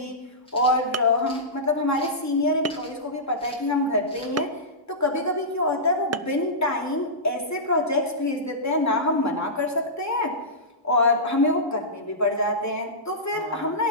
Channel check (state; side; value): normal; both; correlation -0.16